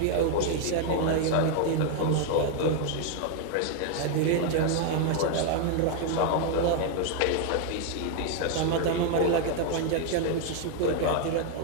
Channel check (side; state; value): both; different; correlation 0.01